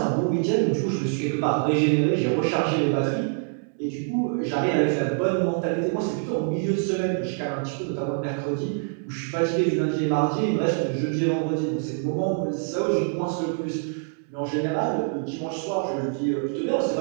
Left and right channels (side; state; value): left; silent; 62 dB below the other